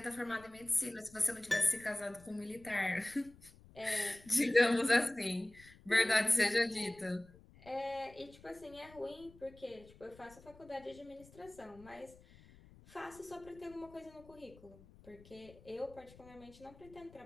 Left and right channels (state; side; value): noise; left; rumble, 23 dB below the sound